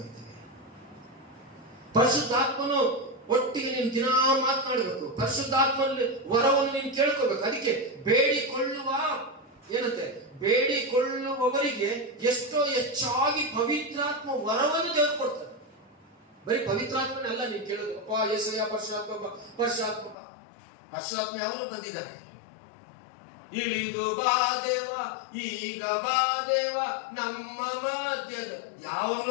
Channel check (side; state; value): right; drops out; at 20.2 s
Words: ಪರಿಶುದ್ಧಾತ್ಮನು ಒಟ್ಟಿಗೆ ನೀನು ದಿನ ಮಾತನಾಡಬೇಕು. ಪರಿಶುದ್ಧಾತ್ಮನಲ್ಲಿ ವರವನ್ನು ನೀನು ಕೇಳ್ಕೋಬೇಕು. ಅದಕ್ಕೆ ಬೇಡಿಕೊಳ್ಳುವ ಏನಂತೆ, ಬೇಡಿಕೊಳ್ಳುವವರಿಗೆ ಎಷ್ಟೋ ಹೆಚ್ಚಾಗಿ ಪವಿತ್ರಾತ್ಮ ವರವನ್ನು ದೇವರು ಕೊಡ್ತಾರೆ. ಬರೀ ಪವಿತ್ರಾತ್ಮನೆಲ್ಲ ನೀನು ಕೇಳೋದು, ಅಪ್ಪ ಯೇಸಯ್ಯ ಪರಶುರಾತ್ಮ ಪರಶುರಾತ್ಮಕ. ಪರಶುರಾತ್ಮ ಯಾವಾಗ ಬಂದಿದ್ದಾನೆ? ಇಳಿದು ಬಾ ದೇವ, ಈಗ ಬಾ ದೇವ ನಮ್ಮ ಮಧ್ಯದ.